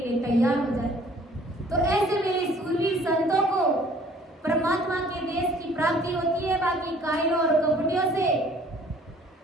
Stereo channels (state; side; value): normal; both; correlation 0.55